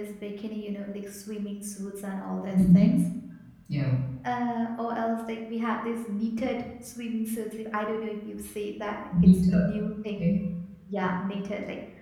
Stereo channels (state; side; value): identical; both; correlation 1.00